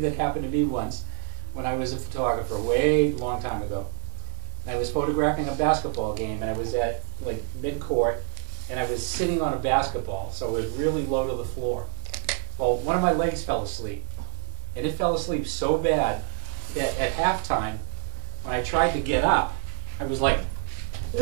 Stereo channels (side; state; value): left; silent; digital silence